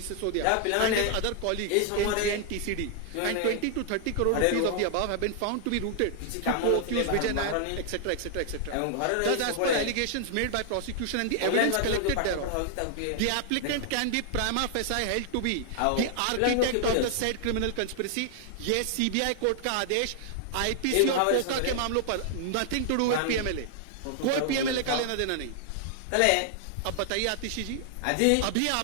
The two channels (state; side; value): different; both; correlation 0.00